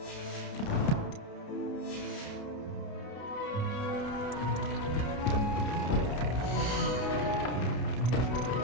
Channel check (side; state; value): right; late; 30 ms